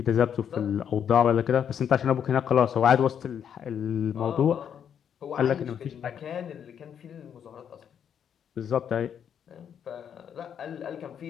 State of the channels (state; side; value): quieter; right; 8.4 dB